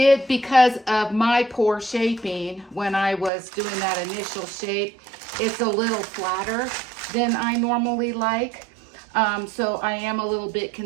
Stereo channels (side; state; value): left; drops out; at 3.3 s